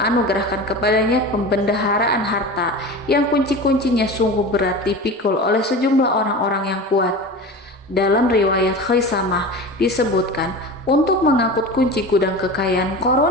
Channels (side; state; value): both; normal; correlation 0.31